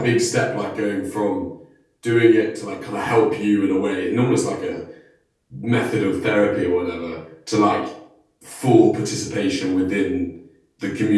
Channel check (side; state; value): both; identical; correlation 1.00